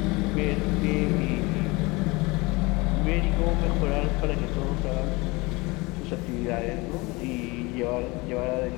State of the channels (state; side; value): quieter; right; 24.4 dB